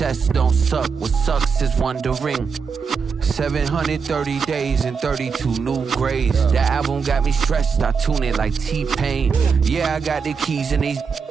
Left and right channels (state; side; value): quieter; left; 5.7 dB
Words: don't suck, what sucks is wondering. 730 days and 32 new grades. That album got me stressed, I tune it like T-Pain. Yeah, I got the keys and these